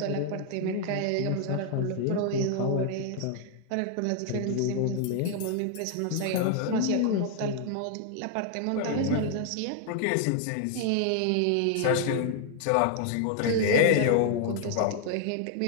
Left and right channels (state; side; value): different; both; correlation 0.00